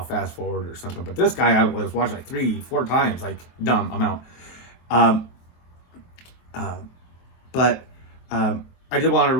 fast forward or something. But this guy, I was watching like 3-4 times, like dumb amount. But I did want to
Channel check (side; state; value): right; late; 23 ms